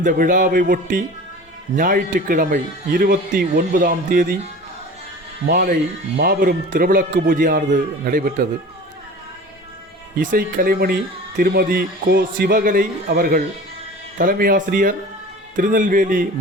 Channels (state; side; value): normal; both; correlation 0.39